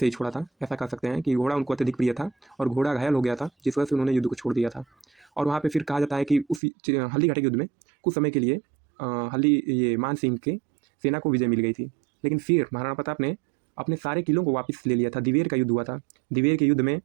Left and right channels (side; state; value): left; drops out; at 6.6 s